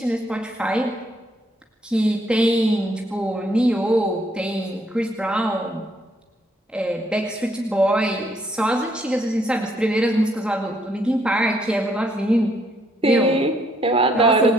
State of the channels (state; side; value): normal; both; correlation 0.70